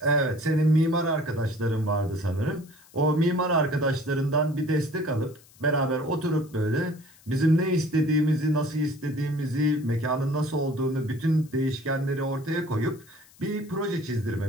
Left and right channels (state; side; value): noise; left; hiss, 26 dB below the sound